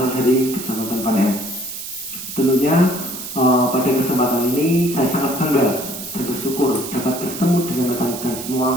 dari Kecamatan Panen. Tentunya pada kesempatan ini saya sangat bangga dan bersyukur dapat bertemu dengan rekan-rekan semua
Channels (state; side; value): noise; right; hiss, 9 dB below the sound